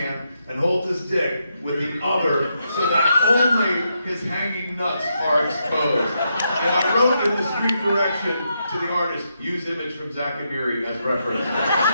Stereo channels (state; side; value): inverted; both; correlation -0.81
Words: and holds his dick with the other so that only his hanging nuts are exposed. And I wrote in the street direction to the artist, use image from Zach Amiri as reference.